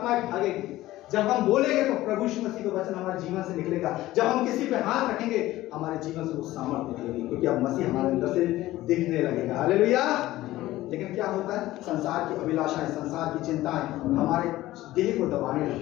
भागेगी, जब हम बोलेंगे तो प्रभु यीशु मसीह का वचन हमारे जीवन से निकलेगा, जब हम किसी पे हाथ रखेंगे हमारे जीवन से वो सामर्थ निकलेगी, क्योंकि अब मसीह हमारे अंदर से दिखने लगेगा। हालेलुया। लेकिन क्या होता है? संसार की अभिलाषाएं, संसार की चिंताएं हमारे देह को दबाने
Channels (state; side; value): quieter; right; 16.3 dB